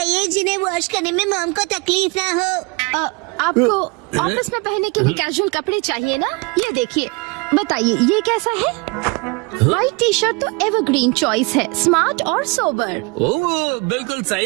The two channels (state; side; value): quieter; left; 28.7 dB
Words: जिन्हें वॉश करने में मॉम को तकलीफ ना हो। आपको ऑफिस में पहनने के लिए कैजुअल कपड़े चाहिए ना? ये देखिए, बताइए ये कैसा है? व्हाइट टी शर्ट तो एवरग्रीन चॉइस है, स्मार्ट और सोबर। ओह, बिल्कुल